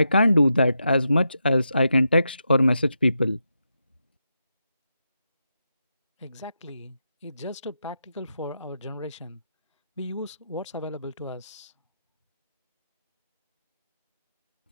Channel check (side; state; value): both; inverted; correlation -0.86